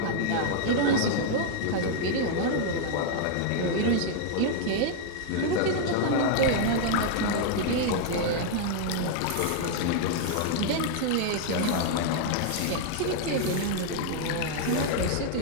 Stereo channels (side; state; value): both; different; correlation 0.00